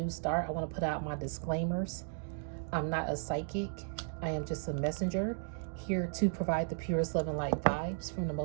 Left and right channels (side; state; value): left; silent; digital silence